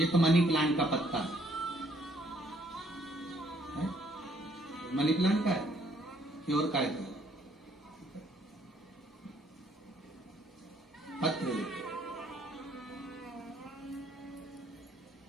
तो मनी प्लांट का पत्ता है? मनी प्लांट का है कि और का है?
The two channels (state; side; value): normal; both; correlation 0.66